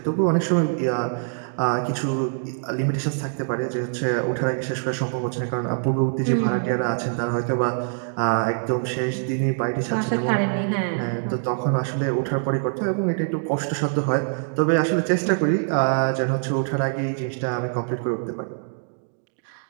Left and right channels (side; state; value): left; silent; digital silence